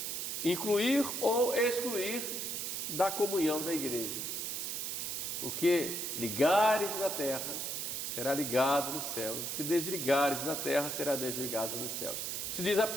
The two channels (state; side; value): noise; right; hiss, 3 dB below the sound